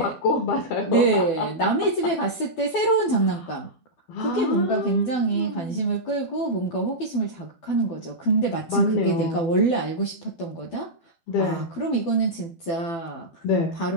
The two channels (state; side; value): late; right; 12 ms